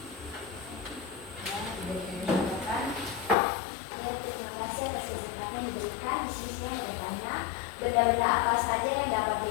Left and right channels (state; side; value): drops out; right; at 3.4 s